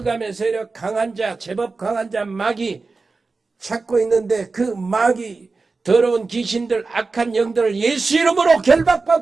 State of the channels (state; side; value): quieter; left; 4.0 dB